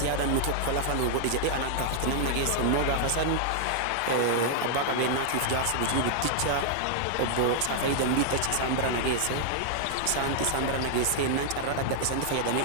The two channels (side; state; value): both; different; correlation -0.01